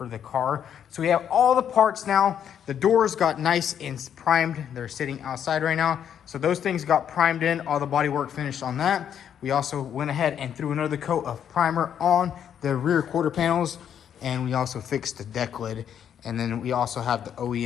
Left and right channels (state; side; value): quieter; right; 9.0 dB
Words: the car. So we have all the parts now. The doors got nice and primed. They're sitting outside right now. So those things got primed in, all the body work finished on that. We also went ahead and threw another coat of primer on the rear quarter panels. And we also fixed the deck lid. And then we also have the